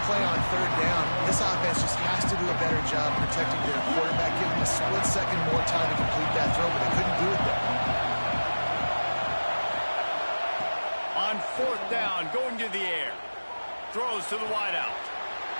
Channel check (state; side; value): inverted; both; correlation -1.00